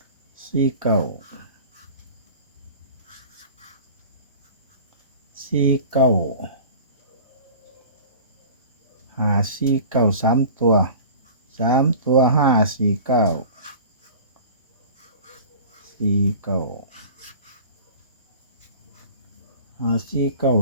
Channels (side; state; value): both; inverted; correlation -0.40